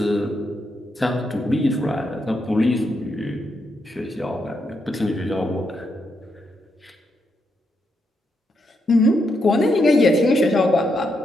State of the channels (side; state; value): both; normal; correlation 0.81